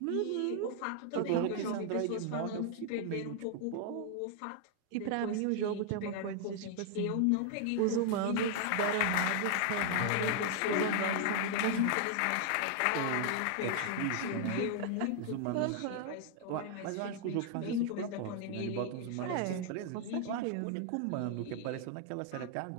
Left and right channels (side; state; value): both; different; correlation 0.00